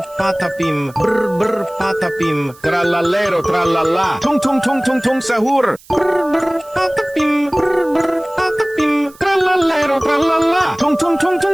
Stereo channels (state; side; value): noise; right; hiss, 25 dB below the sound